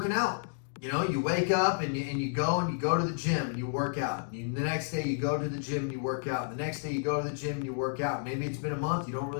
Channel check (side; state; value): right; silent; digital silence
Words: out. You wake up and you go to the gym and you work out. And the next day you go to the gym and you work out. And the next day you go to the gym and you work out. Maybe it's been a month, you don't